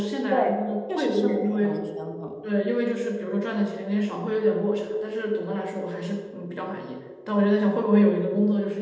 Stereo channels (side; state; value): both; identical; correlation 1.00